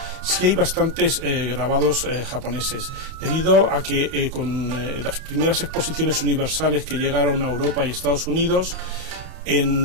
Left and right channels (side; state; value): left; late; 31 ms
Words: sí hay bastantes grabados japoneses, debido a que con las primeras exposiciones universales que llegaron a Europa y Estados Unidos,